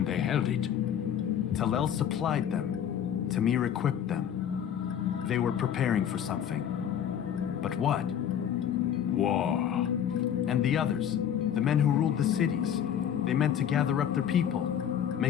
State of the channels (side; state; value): right; quieter; 9.2 dB